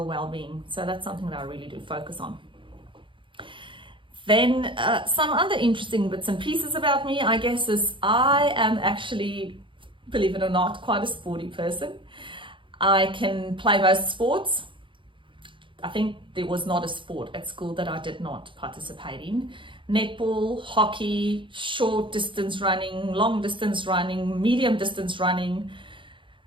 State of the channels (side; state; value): left; late; 0.24 ms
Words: well-being. So that's something that I really do focus on. Then some other interesting bits and pieces about me, I guess, is I am actually, believe it or not, quite a sporty person. I can play most sports. I think there was not a sport at school that I did not participate in. Netball, hockey, short distance running, long distance running, medium distance running.